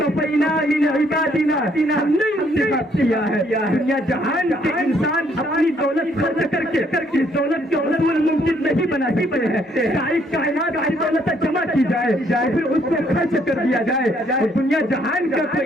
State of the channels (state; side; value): normal; both; correlation 0.67